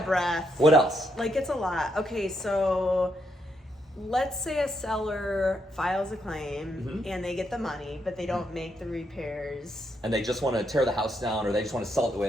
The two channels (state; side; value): normal; both; correlation 0.78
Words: a breath. What else? Like it's a lot. Okay, so let's say a seller files a claim and they get the money, but they don't make the repairs. And they just want to tear the house down, or they just want to sell it the way it